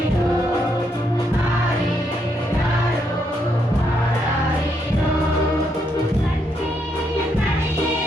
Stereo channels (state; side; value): normal; both; correlation 0.77